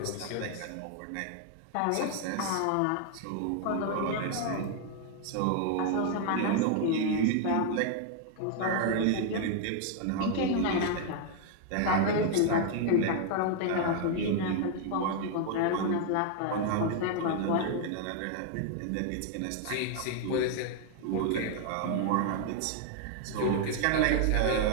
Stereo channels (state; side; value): different; both; correlation 0.00